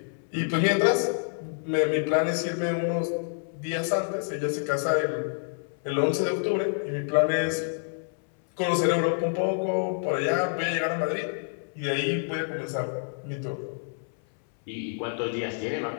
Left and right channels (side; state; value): right; silent; 60 dB below the other